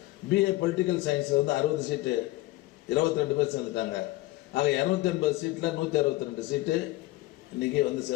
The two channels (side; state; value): right; quieter; 18.8 dB